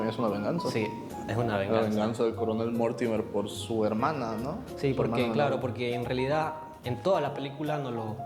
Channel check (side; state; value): both; identical; correlation 1.00